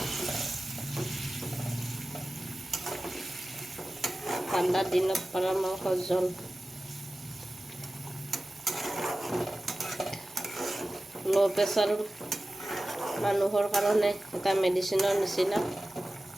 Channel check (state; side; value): normal; both; correlation 0.95